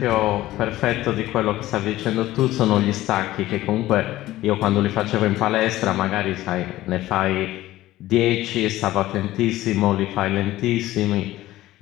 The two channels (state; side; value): quieter; right; 15.9 dB